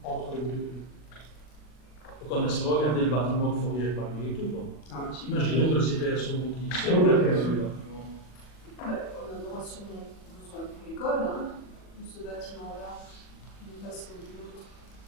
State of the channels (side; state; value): right; late; 40 ms